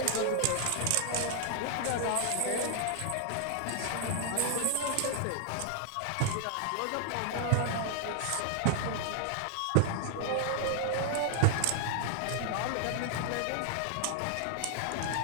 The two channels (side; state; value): both; different; correlation 0.00